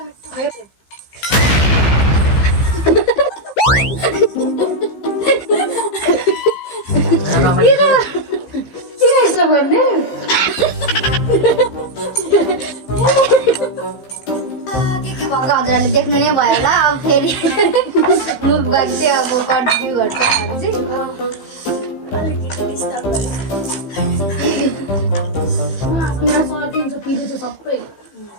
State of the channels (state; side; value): late; right; 15 ms